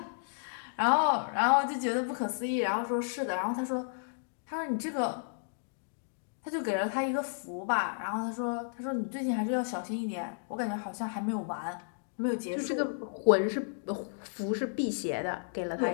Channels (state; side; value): silent; right; digital silence